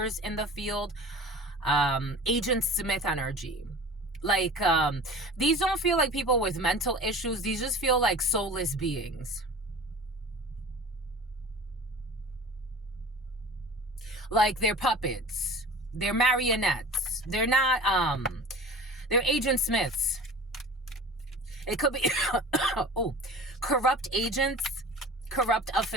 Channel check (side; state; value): both; normal; correlation 0.39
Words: in the field. Agent Smith energy. Like, these don't feel like people with mental issues. These just feel like soulless beings. Like, they're puppets. They're marionettes. They're not, they're Agent Smiths. It could be oh, corrupt agents, corrupt